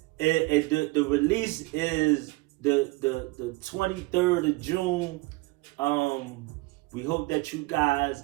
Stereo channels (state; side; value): quieter; left; 23.5 dB